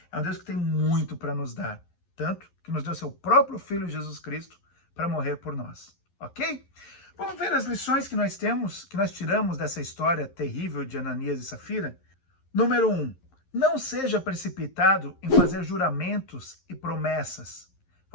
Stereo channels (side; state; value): right; late; 11 ms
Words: é um Deus que tem muito para nos dar. Tanto que nos deu seu próprio Filho Jesus Cristo para morrer por nós. Ok? Vamos ver as lições que nós tiramos dessa história terrível de Ananias e Safira? Número 1. Não seja precipitado em fazer juramentos e promessas.